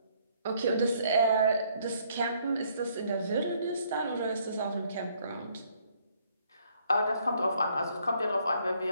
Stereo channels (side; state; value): both; inverted; correlation -0.66